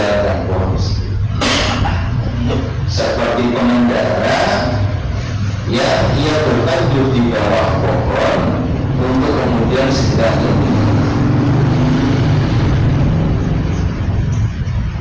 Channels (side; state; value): both; identical; correlation 1.00